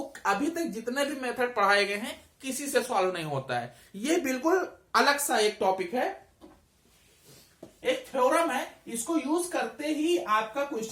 अभी तक जितने भी मेथड पढ़ाए गए हैं किसी से सॉल्व नहीं होता है। ये बिल्कुल अलग सा एक टॉपिक है, एक थ्योरम है, इसको यूज करते ही आपका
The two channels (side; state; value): both; identical; correlation 1.00